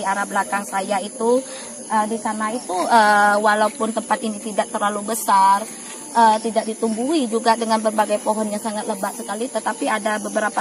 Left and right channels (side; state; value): both; identical; correlation 1.00